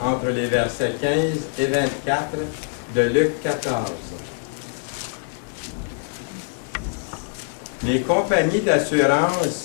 les versets 15 et 24 de Luc 14. Les compagnies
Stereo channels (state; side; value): silent; right; digital silence